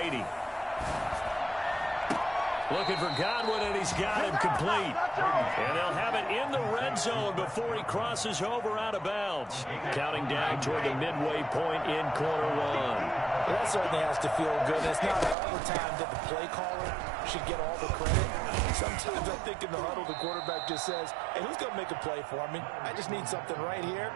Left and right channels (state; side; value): drops out; left; at 15.4 s